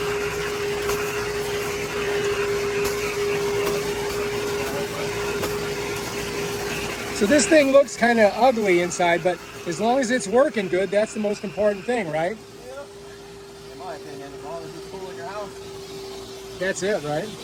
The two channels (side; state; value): both; identical; correlation 1.00